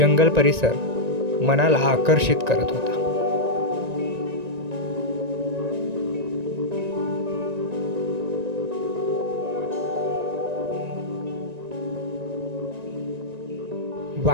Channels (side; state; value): left; late; 1.9 ms